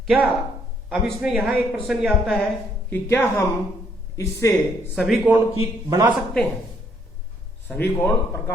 क्या अब इसमें यहां एक प्रश्न ये आता है कि क्या हम इससे सभी कोण की बना सकते हैं? सभी कोण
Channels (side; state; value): both; normal; correlation 0.68